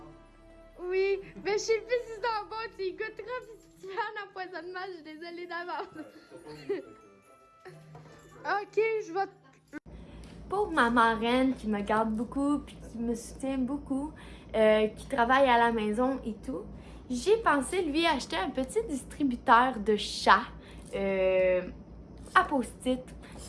Oui, mais je sais plus si c'est en bon, tu y goûteras, puis si tu fais un empoisonnement, je suis désolée d'avance. Ok, je vais... Pour ma marraine qui me garde beaucoup, puis qui me soutient beaucoup, qui travaille à la maison et tout, j'ai pensé lui acheter un petit distributeur de chats à post-it.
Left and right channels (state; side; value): identical; both; correlation 1.00